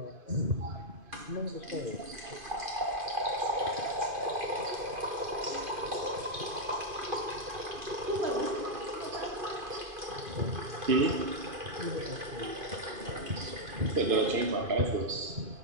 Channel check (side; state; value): left; late; 2.5 ms